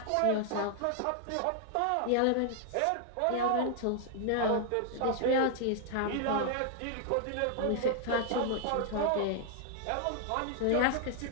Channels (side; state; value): both; different; correlation 0.00